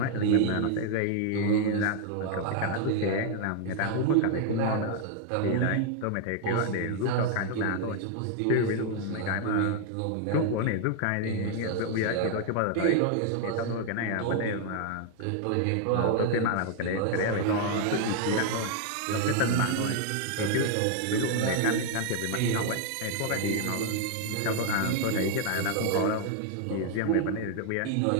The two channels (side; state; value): both; different; correlation 0.00